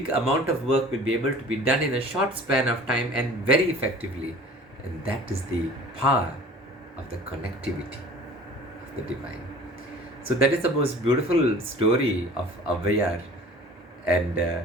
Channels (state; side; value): normal; both; correlation 0.45